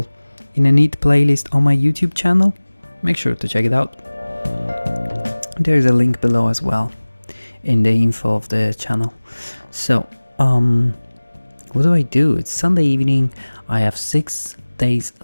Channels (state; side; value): inverted; both; correlation -1.00